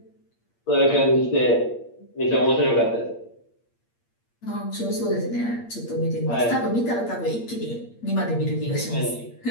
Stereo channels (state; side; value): late; right; 8.6 ms